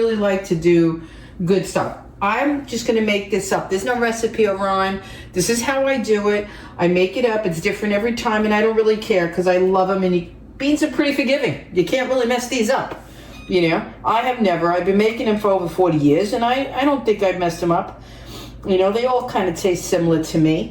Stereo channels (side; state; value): both; identical; correlation 1.00